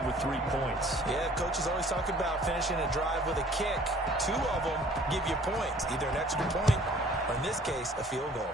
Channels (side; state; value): both; normal; correlation 0.54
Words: with 3 points. Yeah, coaches always talk about finishing a drive with a kick. 2 of them give you points, either an extra point or, in this case, a field goal.